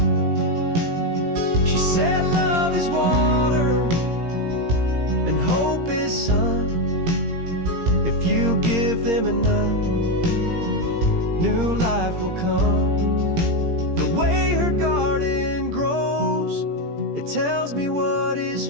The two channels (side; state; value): left; late; 17 ms